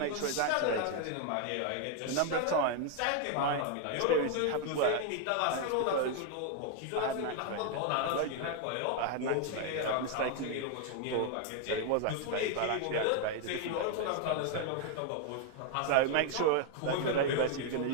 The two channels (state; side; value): different; both; correlation 0.00